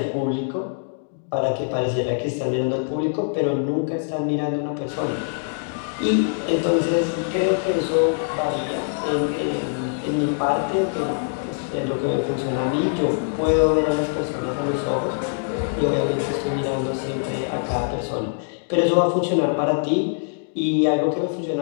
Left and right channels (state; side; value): silent; right; digital silence